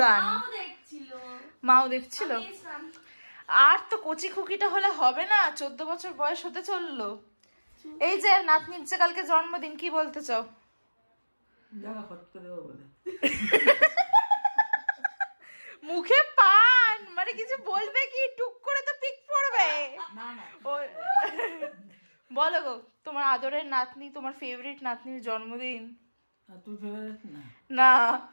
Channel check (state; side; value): inverted; both; correlation -1.00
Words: মাও দেখছিল। আর তো কচি খুকিটা হলে হবে না, 14 বছর বয়স হতে চললো। এই যে নাতনির যে কালকে জন্মদিন, কি বলতে চাও? মুখে পা নাতনি, তোমার ফেভারিট নাতনির জন্মদিন। তুই ফেভারিট না? না,